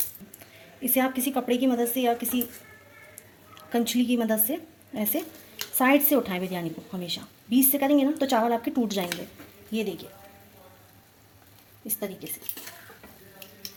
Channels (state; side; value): identical; both; correlation 1.00